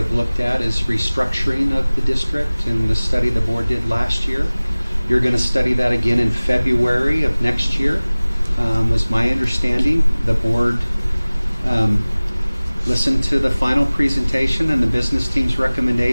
looked at is restructuring of the district and the study the board did last year. You're going to study that again in February of next year, was my understanding. The board listened to the final presentation and the business team's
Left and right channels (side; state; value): both; inverted; correlation -1.00